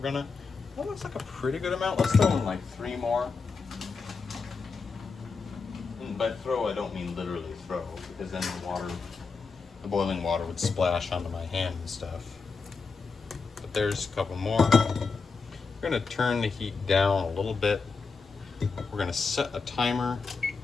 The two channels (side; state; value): right; quieter; 4.7 dB